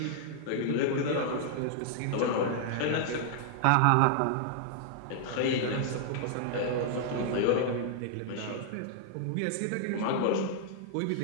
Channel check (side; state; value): both; different; correlation -0.01